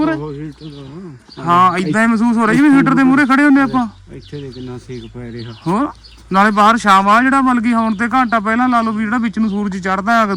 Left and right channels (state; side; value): identical; both; correlation 1.00